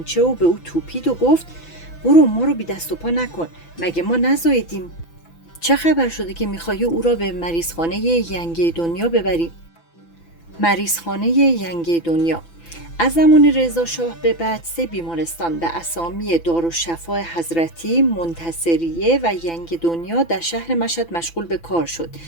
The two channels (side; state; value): right; late; 6.0 ms